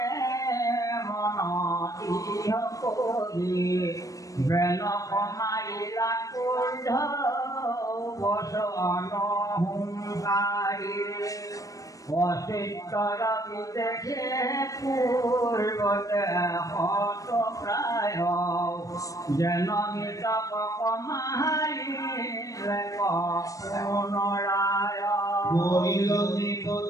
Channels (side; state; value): right; late; 0.16 ms